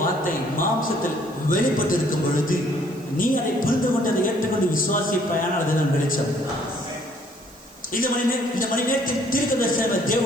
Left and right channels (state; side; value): noise; right; hiss, 25 dB below the sound